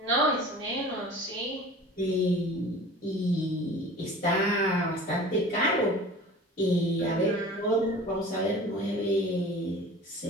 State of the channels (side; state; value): both; normal; correlation 0.41